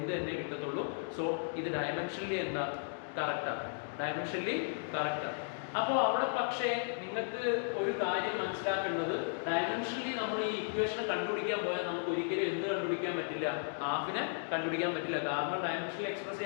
തന്നെ കിട്ടത്തുള്ളൂ. സോ ഇത് ഡയമെൻഷനലി എന്താ, കറക്റ്റാണ്, അപ്പോൾ അവിടെ പക്ഷേ നിങ്ങൾക്ക് ഒരു കാര്യം മനസ്സിലാക്കേണ്ടത്, ഡയമെൻഷനലി നമ്മൾ ഈ ഇക്വേഷൻ കണ്ടുപിടിക്കാൻ പോയാൽ നമുക്ക് ഒരിക്കലും എന്ത് കണ്ടുപിടിക്കാൻ പറ്റില്ല, ഹാഫിനെ കണ്ടുപിടിക്കാൻ പറ്റില്ല. കാരണം ഡയമെൻഷനലി എക്സ്പ്രസ്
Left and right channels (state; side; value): silent; right; digital silence